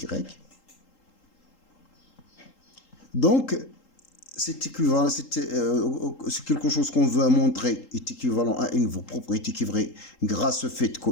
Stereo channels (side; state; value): right; late; 3.8 ms